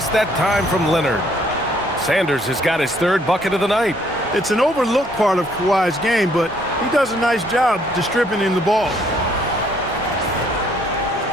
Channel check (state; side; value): normal; both; correlation 0.65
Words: that time from Leonard. Sanders has got his 3rd bucket of the night. It's an overlooked part of Kawhi's game, but he does a nice job distributing the ball.